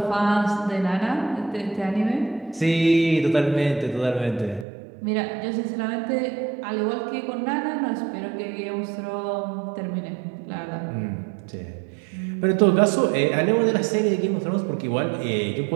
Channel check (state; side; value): drops out; left; at 4.7 s